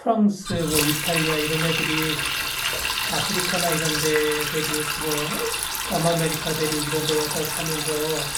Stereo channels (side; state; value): both; identical; correlation 1.00